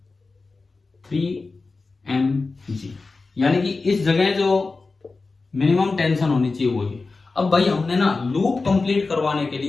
3mg। यानी कि इस जगह जो मिनिमम टेंशन होनी चाहिए वो ये। अब भाई हमने ना लूप कंप्लीट करवाने के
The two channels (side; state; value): right; quieter; 3.9 dB